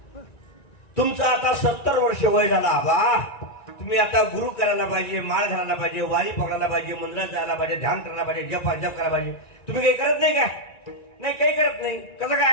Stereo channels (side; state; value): right; late; 1.9 ms